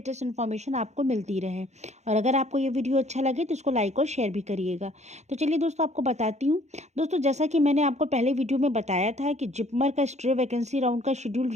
इन्फॉर्मेशन आपको मिलती रहे। और अगर आपको ये वीडियो अच्छा लगे तो इसको लाइक और शेयर भी करिएगा। तो चलिए दोस्तों, आपको बताती हूँ। दोस्तों, जैसा कि मैंने आपको पहले वीडियो में बताया था कि जिपमर का स्ट्रे वैकेंसी राउंड का शेड्यूल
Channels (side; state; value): left; late; 0.33 ms